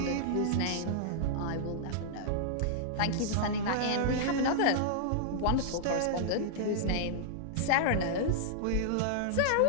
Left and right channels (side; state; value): both; different; correlation -0.02